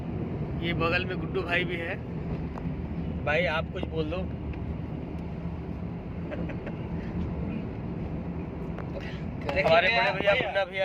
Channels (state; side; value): identical; both; correlation 1.00